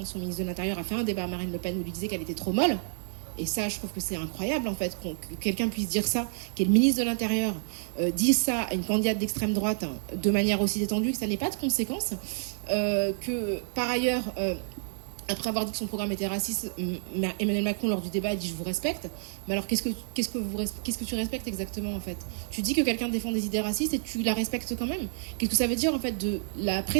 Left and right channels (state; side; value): silent; left; digital silence